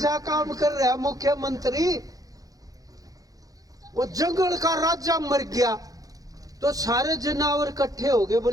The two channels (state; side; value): late; left; 0.17 ms